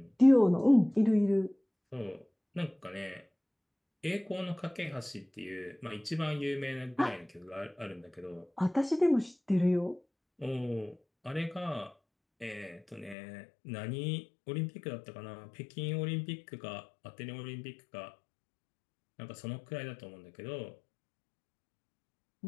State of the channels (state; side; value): drops out; right; at 13.2 s